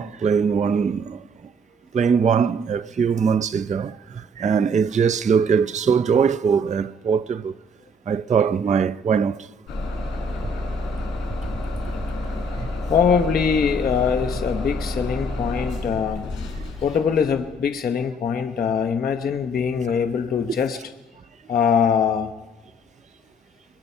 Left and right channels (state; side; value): normal; both; correlation 0.61